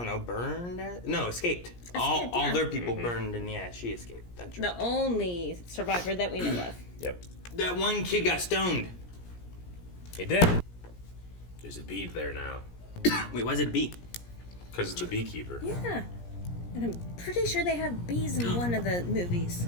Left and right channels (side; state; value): right; late; 17 ms